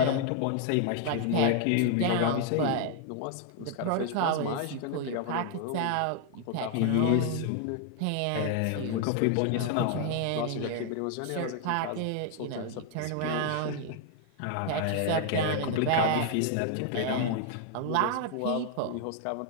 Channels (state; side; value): different; both; correlation 0.00